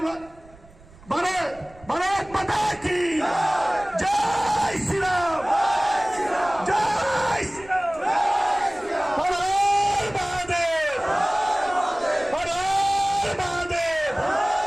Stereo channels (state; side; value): noise; right; rumble, 24 dB below the sound